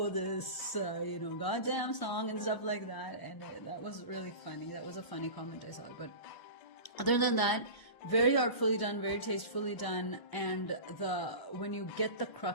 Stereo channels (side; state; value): right; late; 1.0 ms